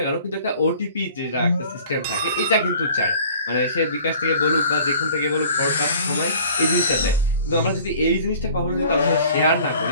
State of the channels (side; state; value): both; inverted; correlation -0.50